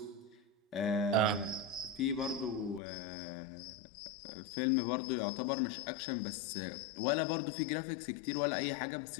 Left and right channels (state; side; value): drops out; right; at 2.8 s